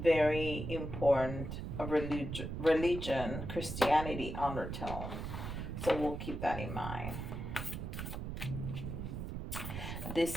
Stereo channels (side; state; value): right; noise; rumble, 5 dB below the sound